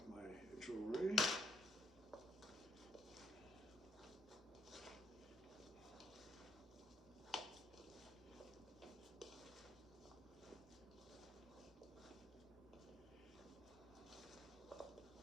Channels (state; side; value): normal; both; correlation 0.70